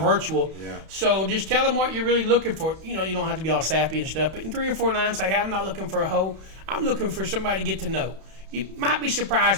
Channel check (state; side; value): late; left; 31 ms